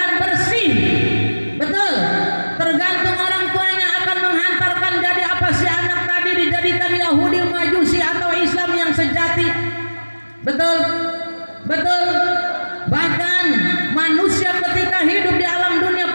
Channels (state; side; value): inverted; both; correlation -1.00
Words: bersih. Betul. Tergantung orang tuanya akan menghantarkan jadi apa si anak tadi, dijadikan Yahudi, Majusi atau Islam yang sejati. Betul. Betul. Bahkan manusia ketika hidup di alam